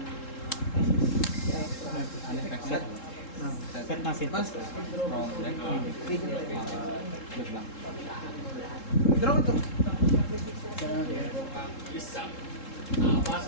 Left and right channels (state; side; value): late; right; 3.7 ms